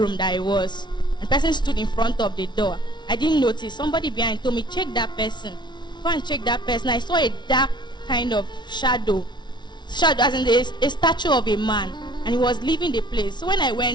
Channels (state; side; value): late; right; 0.21 ms